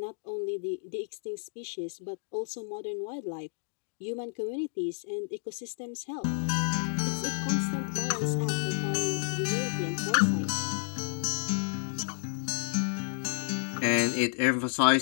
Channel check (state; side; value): silent; right; digital silence